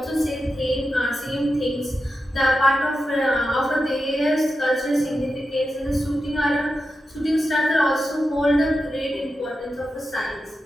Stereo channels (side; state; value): both; normal; correlation 0.90